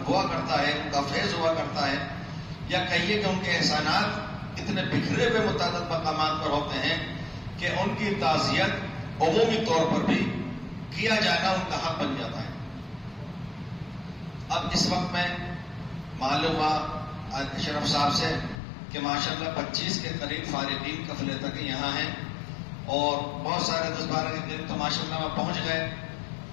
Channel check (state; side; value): drops out; right; at 18.6 s